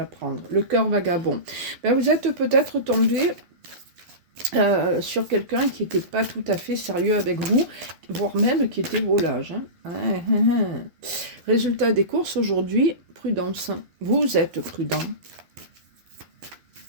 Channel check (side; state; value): left; late; 12 ms